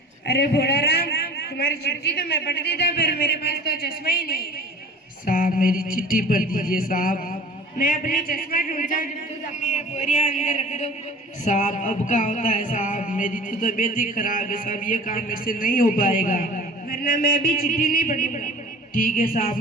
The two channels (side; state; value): both; normal; correlation 0.42